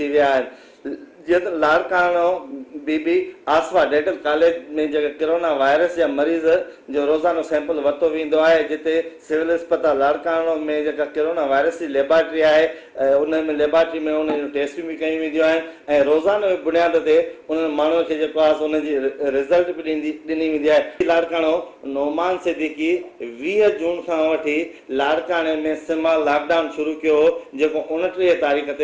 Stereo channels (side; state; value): both; identical; correlation 1.00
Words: विया आहिनि। जीअं त लाड़काणो बीबी आसवा डेंटल कॉलेज में जेके कोरोना वायरस जा मरीज़ जो रोज़ानो सैंपल वरितो वेंदो आहे, जिते सिविल अस्पताल लाड़काणो में जेका कोरोना वायरस जी लेबॉरेटरी आहे उन में लेबॉरेटरी में उन जूं टेस्टियूं बि कयूं वेंदियूं आहिनि ऐं रोज़ानो बुनियाद ते उन्हनि माण्हुनि खे जेको आहे उनजी रिज़ल्ट बि ॾिनी वेंदी आहे। लाड़काणो नोमान सिद्दीकी 20 जून खां वठी लाड़काणे में सिमा लॉकडाउन शुरू कयो, जेको 29 तारीख़